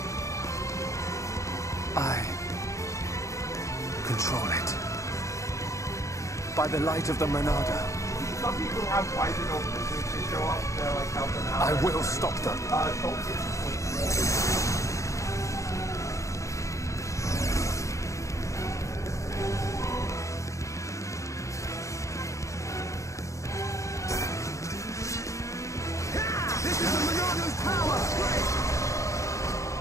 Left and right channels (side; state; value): right; late; 0.15 ms